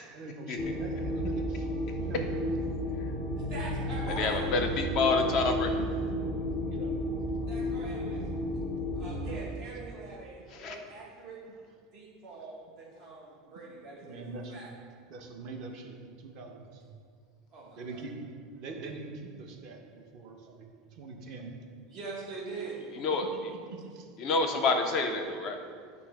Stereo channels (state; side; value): normal; both; correlation 0.33